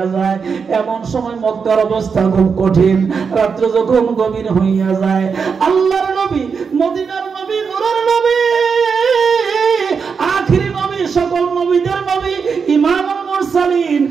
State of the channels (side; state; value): left; quieter; 5.8 dB